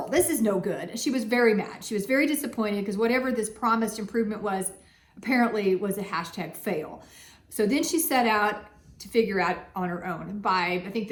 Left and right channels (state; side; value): identical; both; correlation 1.00